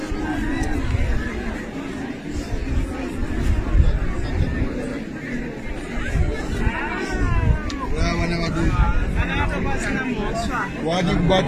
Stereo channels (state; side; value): identical; both; correlation 1.00